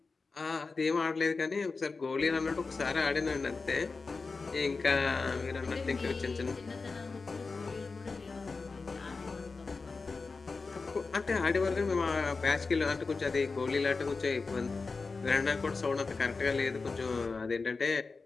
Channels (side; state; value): right; quieter; 4.2 dB